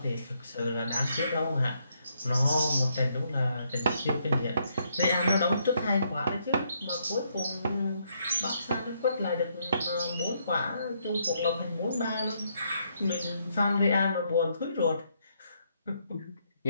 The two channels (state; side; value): inverted; both; correlation -0.74